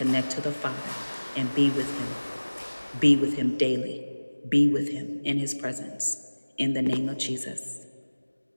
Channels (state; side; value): inverted; both; correlation -1.00